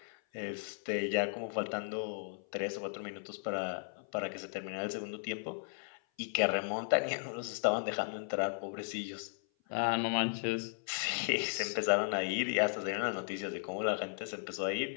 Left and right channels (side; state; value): right; silent; 54 dB below the other